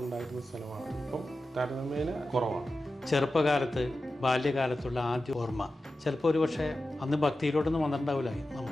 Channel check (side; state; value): both; normal; correlation 0.93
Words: സ്ഥലമാണ്. ഇപ്പം താരതമ്യേന കുറവാണ്. ചെറുപ്പകാലത്ത് ബാല്യകാലത്തുള്ള ആദ്യ ഓർമ്മ ചിലപ്പോൾ ഒരു പക്ഷേ അന്ന് ഭക്തിയിലോട്ടൊന്നും വന്നിട്ടുണ്ടാവില്ല.